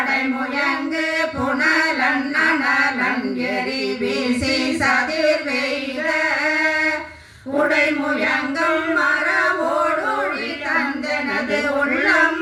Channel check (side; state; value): both; identical; correlation 1.00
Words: புனலன் நனலன் எரி வீசி சதிர் வெய்த உடைமுயங்கும் மரவோடொழி தந்தனது உள்ளம்